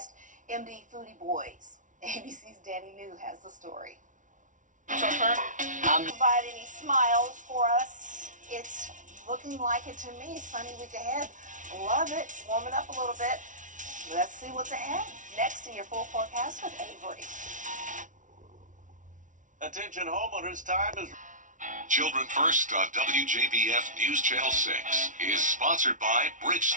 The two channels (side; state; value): left; late; 0.37 ms